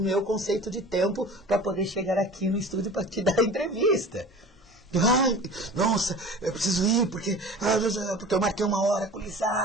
conceito de tempo para poder chegar aqui no estúdio para te dar a entrevista. Ai, nossa, eu preciso ir porque eu marquei 1 hora com o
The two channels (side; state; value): both; normal; correlation 0.39